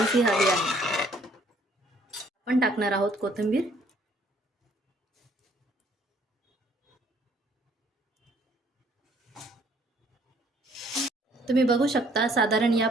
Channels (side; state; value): both; normal; correlation 0.62